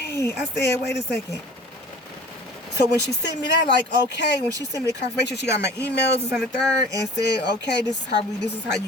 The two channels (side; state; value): both; normal; correlation 0.44